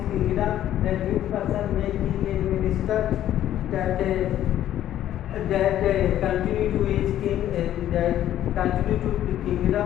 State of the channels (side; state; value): right; quieter; 12.0 dB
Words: kingdom, that which person may king and minister, that continue to his king, that continue to the